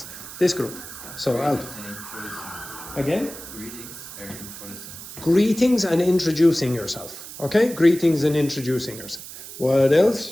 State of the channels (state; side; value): noise; right; hiss, 13 dB below the sound